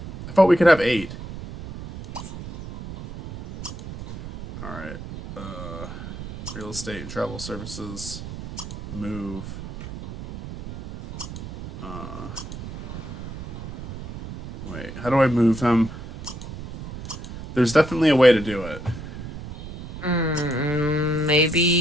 thought we could have 8. Alright. Real estate and travel services. Move. Wait, how do I move him? There's definitely a way to do it.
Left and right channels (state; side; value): noise; right; rumble, 11 dB below the sound